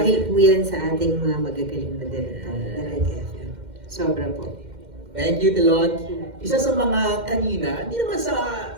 po yan sa ating mga magagaling na director. Talaga. Sobra po. Thank you, Tilot. Isa sa mga kanina, hindi naman sa,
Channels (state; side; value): late; left; 2.1 ms